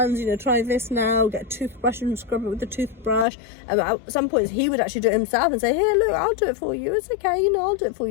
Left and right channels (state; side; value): drops out; right; at 3.2 s